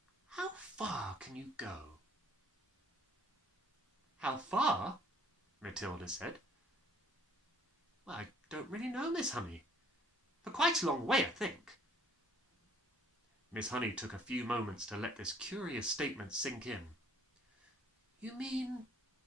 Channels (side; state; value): both; normal; correlation 0.59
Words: How far can you go? How far? Matilda said. Well, I don't really know, Miss Honey. For quite a long way, I think. Miss Honey took a few moments to let this curious statement sink in. You mean,